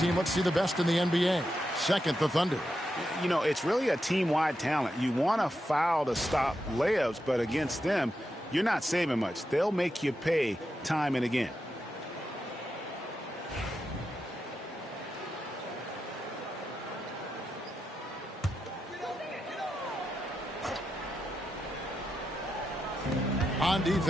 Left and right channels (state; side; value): normal; both; correlation 0.87